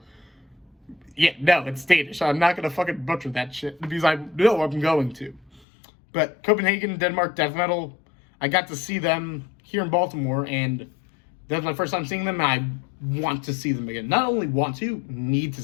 no, it's Danish. I'm not going to fucking butcher that shit because I know I'm going to. But Copenhagen, Denmark, death metal, I got to see them here in Baltimore and that's my first time seeing them and I want to see them again. Not only want to, need to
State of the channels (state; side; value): drops out; right; at 5.7 s